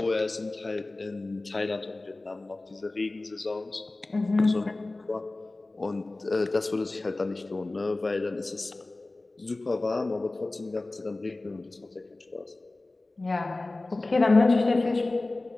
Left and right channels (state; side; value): quieter; right; 3.0 dB